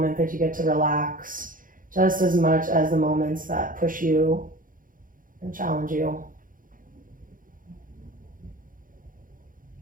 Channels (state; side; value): late; left; 0.40 ms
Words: that you get to relax just as much as the moments that push you and challenge you.